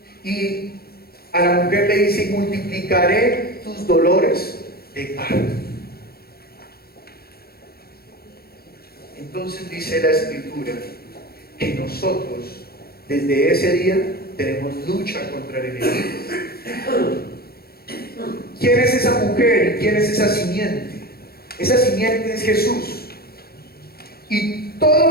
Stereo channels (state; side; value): late; right; 0.45 ms